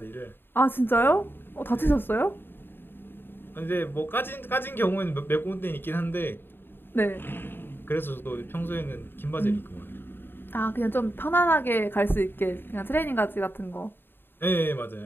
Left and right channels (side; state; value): right; late; 0.10 ms